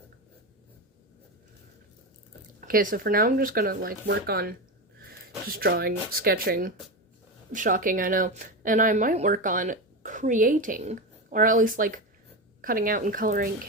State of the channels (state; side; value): normal; both; correlation 0.18